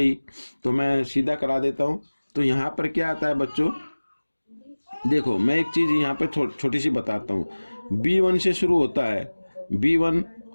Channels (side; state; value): both; inverted; correlation -1.00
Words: तो मैं सीधा करा देता हूँ। तो यहाँ पर क्या आता है बच्चों, देखो मैं एक चीज यहाँ पे छोटी सी बताता हूँ। b1 से शुरू होता है, b1